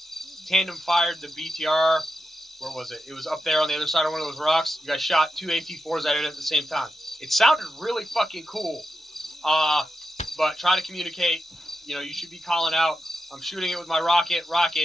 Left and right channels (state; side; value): normal; both; correlation 0.87